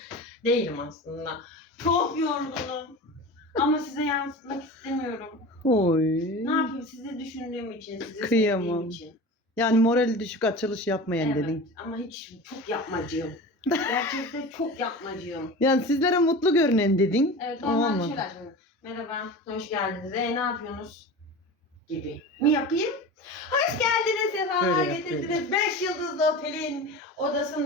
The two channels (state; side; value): normal; both; correlation 0.32